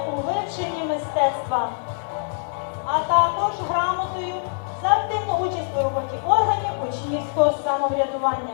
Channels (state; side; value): silent; right; digital silence